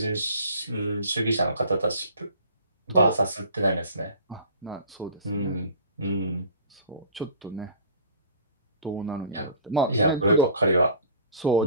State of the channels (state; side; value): inverted; both; correlation -0.45